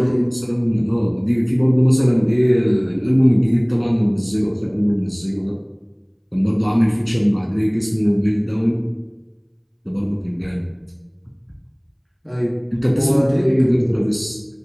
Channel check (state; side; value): identical; both; correlation 1.00